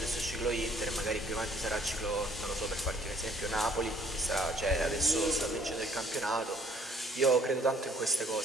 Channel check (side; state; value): both; normal; correlation 0.60